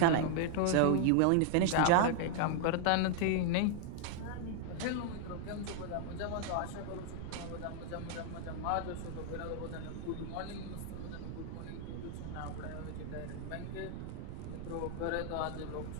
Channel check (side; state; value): both; different; correlation 0.00